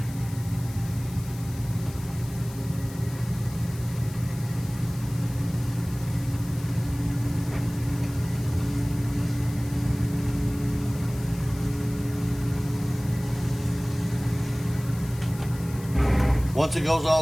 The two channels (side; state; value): left; noise; hiss, 18 dB below the sound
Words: Once it goes